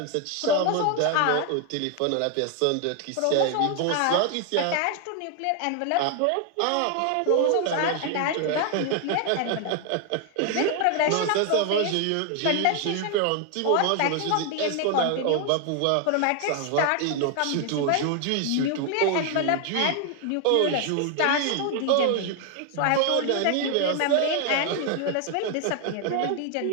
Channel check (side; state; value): both; different; correlation 0.00